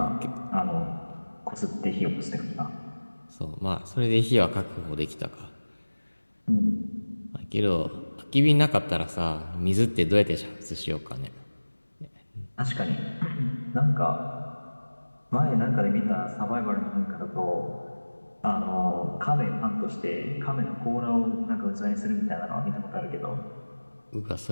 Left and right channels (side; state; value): both; inverted; correlation -1.00